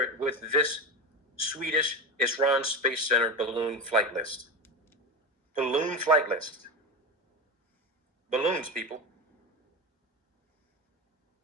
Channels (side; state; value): both; normal; correlation 0.20